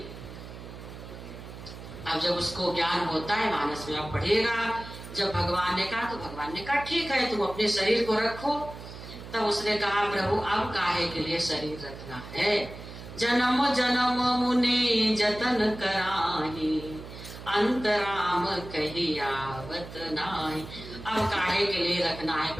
अब जब उसको ज्ञान होता है, मानस में आप पढ़िएगा, जब भगवान ने कहा तो भगवान ने कहा ठीक है तुम अपने शरीर को रखो। तब उसने कहा प्रभु अब काहे के लिए शरीर रखना है? जन्म जन्म मुनि जतन कराही अंतराम कही आवत नाहि। अब काहे के लिए रखना है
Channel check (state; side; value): noise; right; hum, 13 dB below the sound